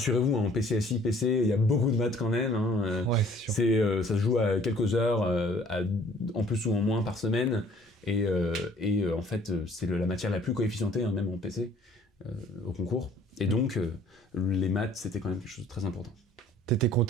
en PCSI, PC, il y a beaucoup de maths quand même. Ça se joue à quelques heures, en plus ou en moins par semaine. Et en fait, c'est la matière la plus coefficientée, même en PC, au concours. Et donc, les maths, c'était quand même quelque chose de très important. T'étais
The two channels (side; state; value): both; normal; correlation 0.56